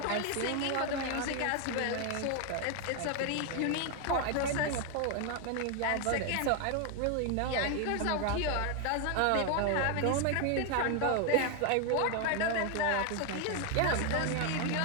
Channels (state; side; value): different; both; correlation 0.01